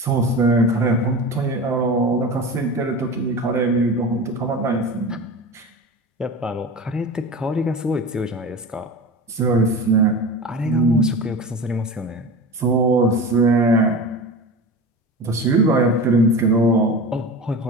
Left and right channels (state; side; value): normal; both; correlation 0.31